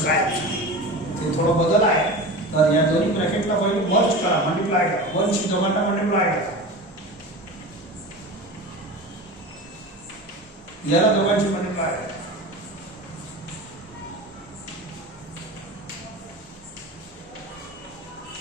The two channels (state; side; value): normal; both; correlation 0.31